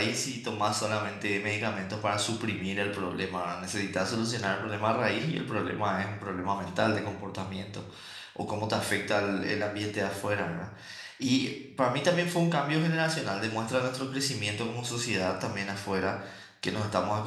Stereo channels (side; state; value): both; identical; correlation 1.00